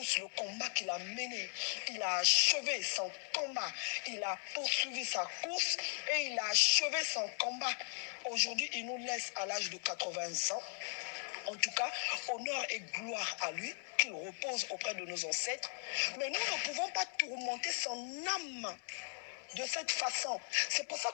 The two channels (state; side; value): silent; right; 52 dB below the other